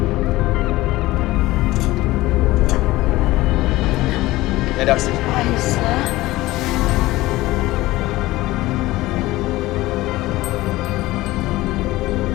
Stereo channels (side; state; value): right; quieter; 18.3 dB